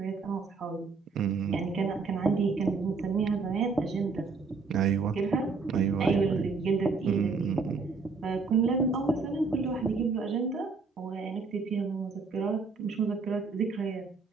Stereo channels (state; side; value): quieter; left; 4.5 dB